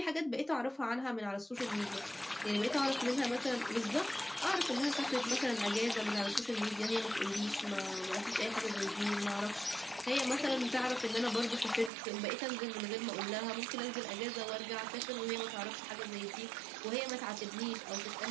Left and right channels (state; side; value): drops out; left; at 11.9 s